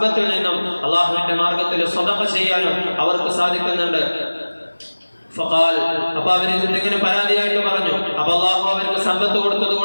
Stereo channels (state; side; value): inverted; both; correlation -1.00